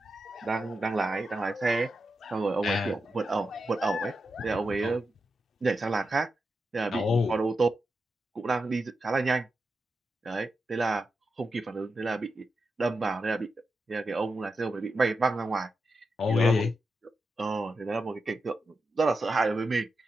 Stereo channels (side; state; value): both; normal; correlation 0.88